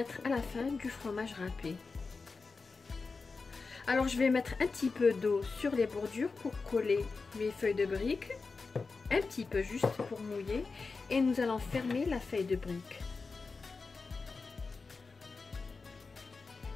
à la fin du fromage râpé. Alors je vais mettre un petit peu d'eau sur les bordures pour coller mes feuilles de briques. Un petit peu juste pour mouiller. Et nous allons fermer la feuille de brique.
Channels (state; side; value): quieter; right; 4.3 dB